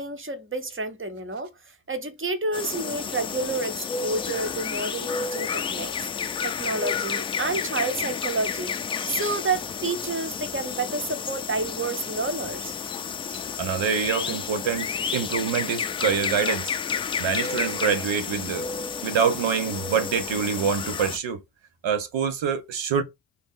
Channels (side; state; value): both; normal; correlation -0.14